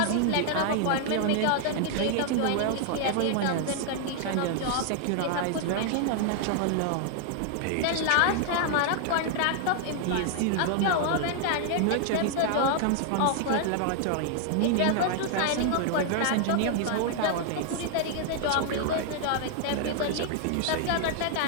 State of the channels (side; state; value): both; different; correlation 0.00